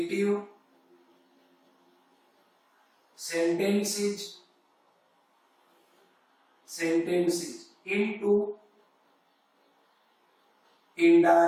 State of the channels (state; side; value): identical; both; correlation 1.00